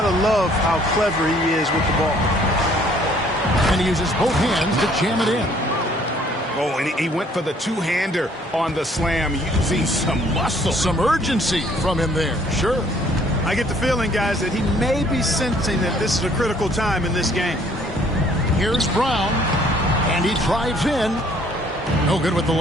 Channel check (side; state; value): both; normal; correlation 0.60